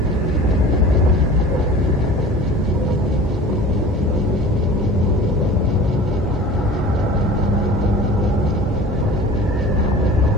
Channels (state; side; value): normal; both; correlation 0.41